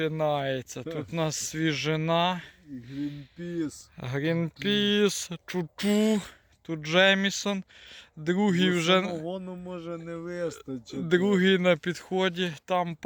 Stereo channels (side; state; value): both; identical; correlation 1.00